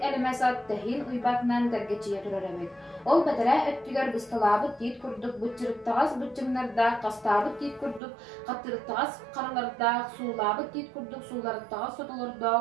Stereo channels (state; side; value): drops out; left; at 8.0 s